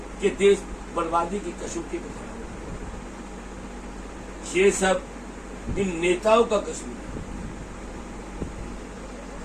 कि देश बर्बादी की कसौटी में खड़ा है। ये सब इन नेताओं का कसूर है।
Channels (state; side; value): identical; both; correlation 1.00